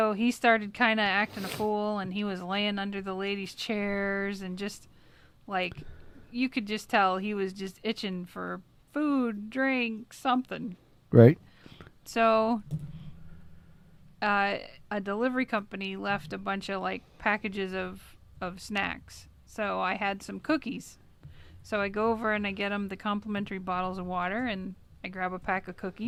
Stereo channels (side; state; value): both; identical; correlation 1.00